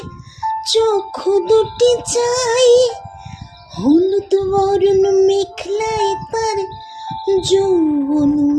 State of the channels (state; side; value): identical; both; correlation 1.00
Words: চক্ষু দুটি চাই। হলুদ বরণ মেখলাই তার যৌবন